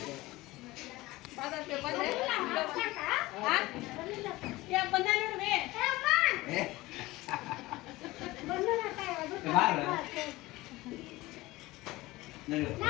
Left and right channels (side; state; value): right; quieter; 19.4 dB